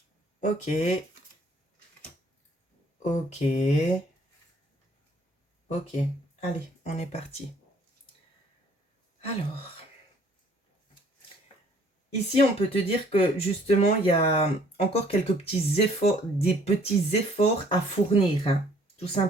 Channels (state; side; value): normal; both; correlation 0.59